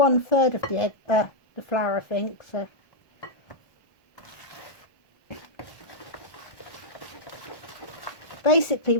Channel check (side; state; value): right; late; 1.2 ms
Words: of the egg, the flour, I think. So basically,